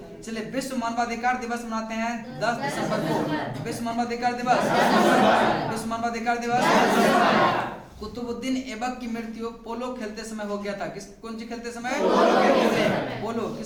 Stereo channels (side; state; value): both; identical; correlation 1.00